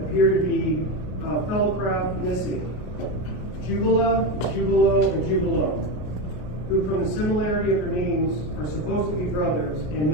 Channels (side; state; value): right; late; 33 ms